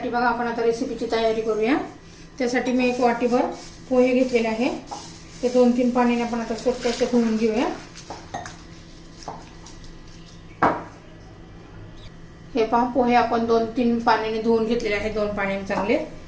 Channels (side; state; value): both; identical; correlation 1.00